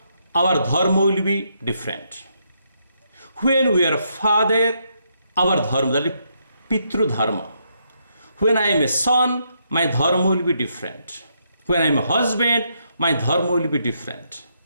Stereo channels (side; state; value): both; inverted; correlation -0.77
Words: our dharma will be different. When we are father, our dharma, that is Pitru dharma. When I am a son, my dharma will be different. When I am a husband, my dharma will be different.